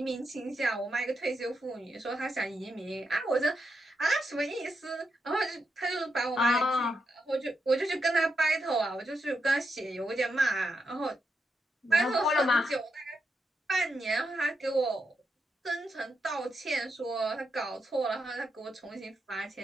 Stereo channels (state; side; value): normal; both; correlation 0.83